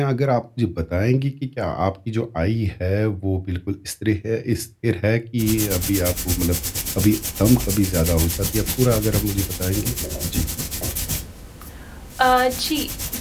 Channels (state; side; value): identical; both; correlation 1.00